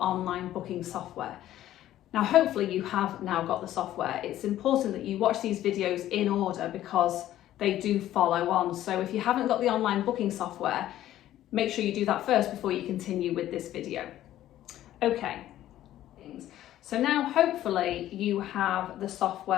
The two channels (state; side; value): quieter; right; 13.2 dB